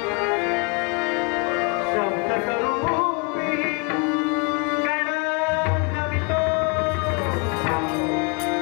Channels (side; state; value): right; quieter; 32.3 dB